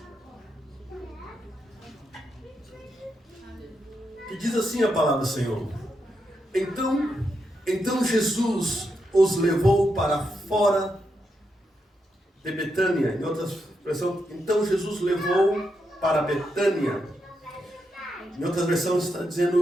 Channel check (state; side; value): normal; both; correlation 0.83